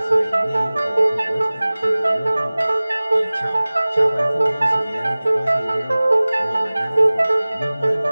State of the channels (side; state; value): both; inverted; correlation -0.99